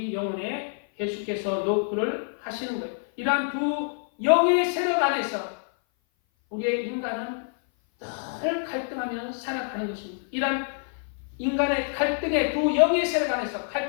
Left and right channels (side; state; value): right; silent; 57 dB below the other